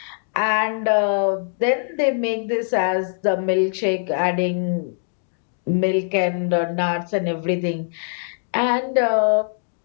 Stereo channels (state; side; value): silent; right; digital silence